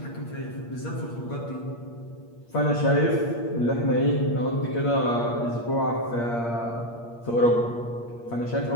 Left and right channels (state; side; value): late; right; 8.6 ms